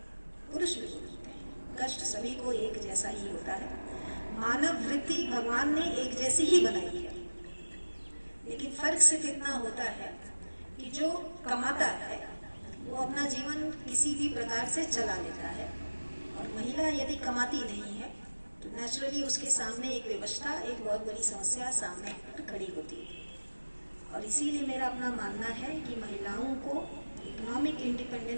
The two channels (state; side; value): inverted; both; correlation -1.00